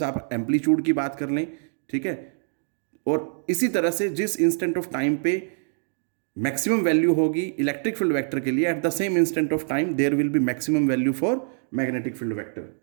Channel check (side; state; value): left; silent; 56 dB below the other